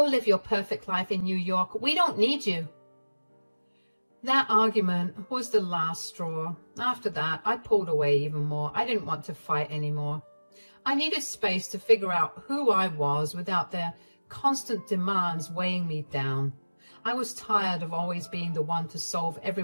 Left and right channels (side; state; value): both; inverted; correlation -1.00